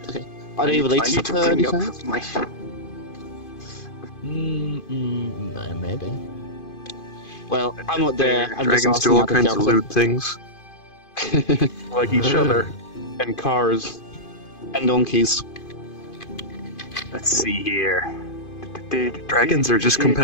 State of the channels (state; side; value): late; right; 2.5 ms